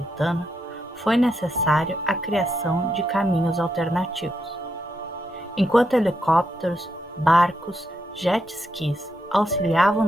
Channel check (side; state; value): both; normal; correlation 0.82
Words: foi necessário a criação de caminhos alternativos. Enquanto helicópteros, barcos, jet skis auxiliavam